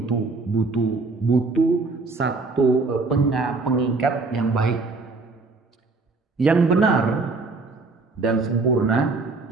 satu pengikat yang baik. Yang benar dan sempurna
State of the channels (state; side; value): quieter; left; 3.8 dB